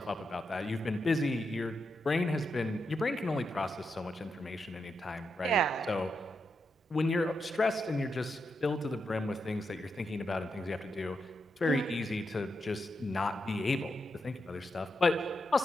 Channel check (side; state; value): both; normal; correlation 0.85